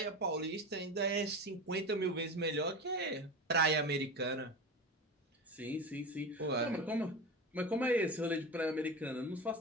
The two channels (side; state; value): both; normal; correlation 0.26